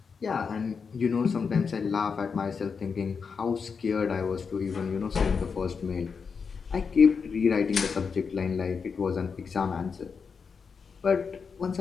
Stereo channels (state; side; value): quieter; right; 5.7 dB